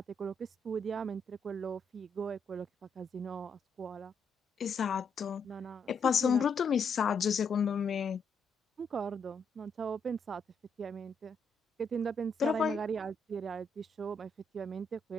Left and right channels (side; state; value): right; quieter; 3.1 dB